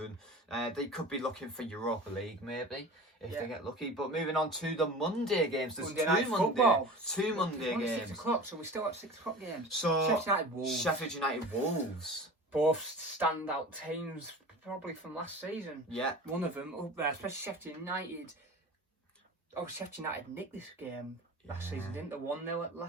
They could be looking for Europa League, maybe, if they get lucky. But moving on to the Monday games. There's two Monday games. 6 o'clock, so we still have 6 o'clock games. So, Sheffield United Wolves. Both standout teams, probably from last season. Yeah. One of them up there, especially Sheffield United. Oh, Sheffield United nicked this game last season, didn't they? 1-0 at the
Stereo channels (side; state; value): both; normal; correlation 0.36